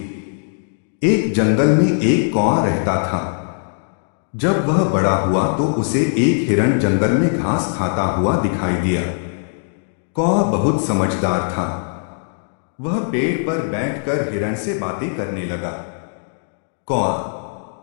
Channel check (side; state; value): right; silent; digital silence